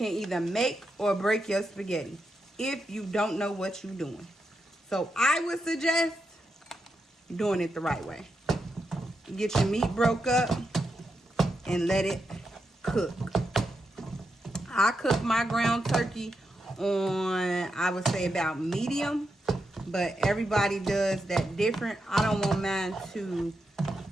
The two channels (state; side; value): normal; both; correlation 0.85